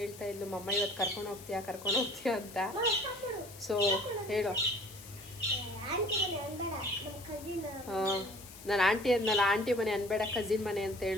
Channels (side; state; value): left; noise; hiss, 17 dB below the sound